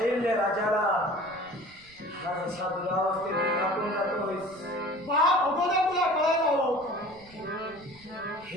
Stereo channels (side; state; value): right; noise; rumble, 25 dB below the sound